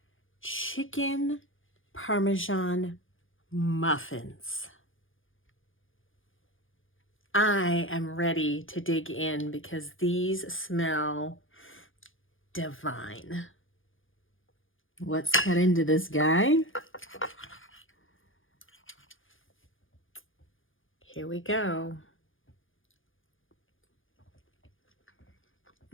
chicken Parmesan muffins. I am ready to dig in because these smell divine. Let's cut into this guy. Here we go.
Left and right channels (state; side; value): late; right; 0.58 ms